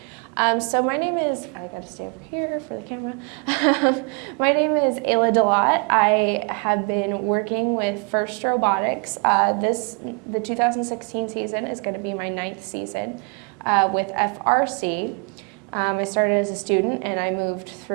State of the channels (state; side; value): quieter; left; 38.0 dB